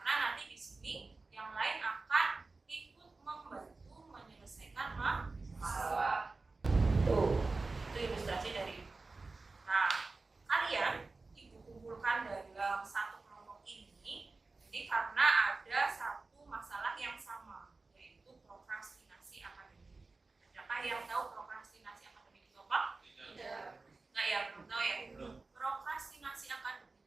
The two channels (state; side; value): quieter; left; 3.7 dB